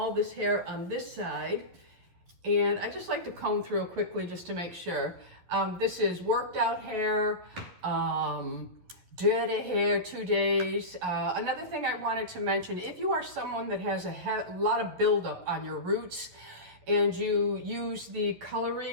this hair on this side. And I just like to comb through quickly just to make sure. This is worked out hair, dirty hair 2 days. Another thing I wanted to mention, if you are someone that has a lot of buildup on your roots and you use the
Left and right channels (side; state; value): left; late; 11 ms